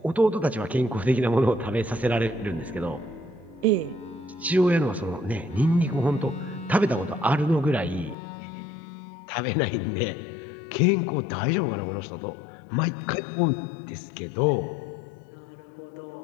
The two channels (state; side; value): drops out; right; at 8.2 s